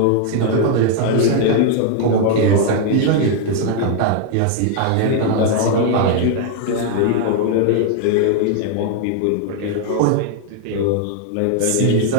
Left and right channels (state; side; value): different; both; correlation 0.00